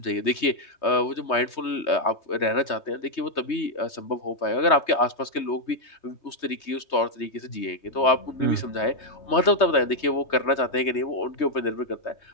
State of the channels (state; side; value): late; right; 3.2 ms